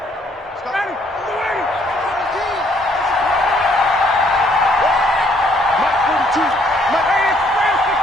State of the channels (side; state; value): both; normal; correlation 0.66